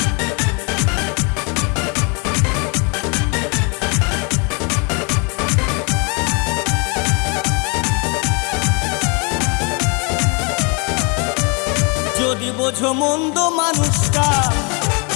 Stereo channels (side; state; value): right; quieter; 33.1 dB